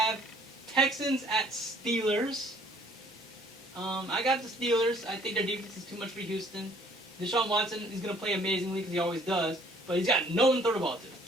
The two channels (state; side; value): normal; both; correlation 0.58